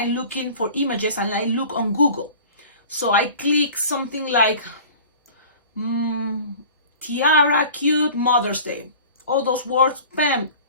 looking for images and I look on Google. So I click something like tiara, cute, Mother's Day, all those words, bam,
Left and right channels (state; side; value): inverted; both; correlation -0.42